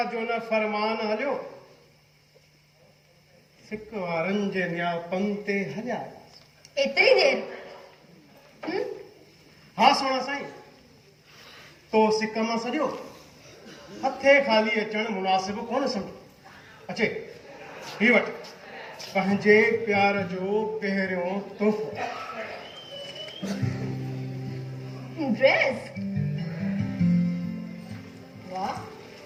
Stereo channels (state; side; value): identical; both; correlation 1.00